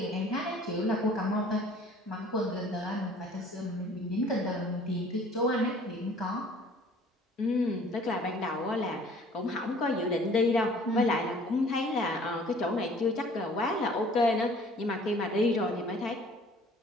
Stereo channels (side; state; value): both; normal; correlation 0.52